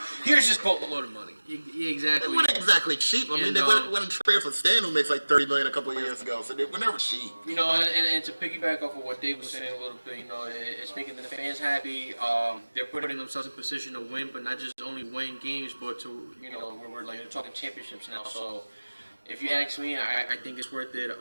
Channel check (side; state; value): both; inverted; correlation -1.00